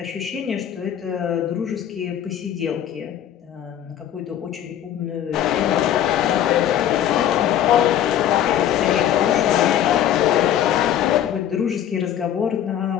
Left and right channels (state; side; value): quieter; right; 10.6 dB